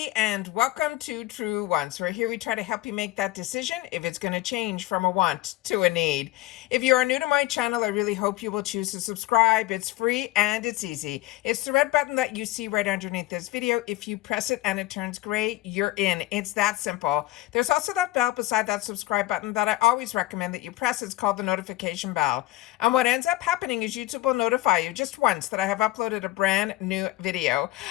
and welcome to True Wants. Where here we try to help you make that decision if it's going to change from a want to a need. If you are new to my channel, I really hope you will choose to subscribe. It's free and it's easy. It's the red button that you see right underneath this video. If you press it and it turns gray, you're in. It's that simple. There's also that bell beside that subscribe button that I always recommend that you press. It's called the notification bell. And what ends up happening is YouTube will notify you just once that I have uploaded a brand new video.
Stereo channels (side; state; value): right; quieter; 17.0 dB